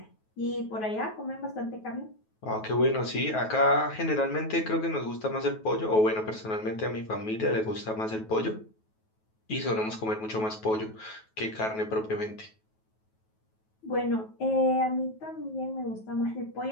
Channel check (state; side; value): late; right; 9.3 ms